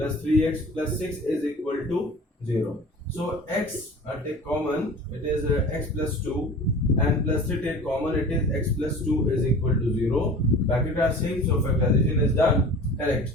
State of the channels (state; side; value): normal; both; correlation 0.40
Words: 3x plus 6 is equal to 0. So x take common, it is x plus 2, and plus 3 take common, it is x plus 2 is equal to 0. Bracket are same, so factorization is done. Correct.